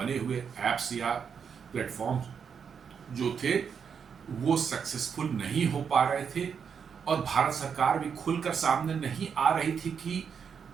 हुए ऐप्स या प्लेटफॉर्म जो थे वो सक्सेसफुल नहीं हो पा रहे थे और भारत सरकार भी खुलकर सामने नहीं आ रही थी कि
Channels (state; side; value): quieter; left; 6.8 dB